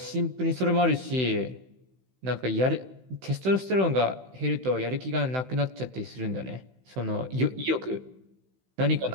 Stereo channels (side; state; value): left; late; 16 ms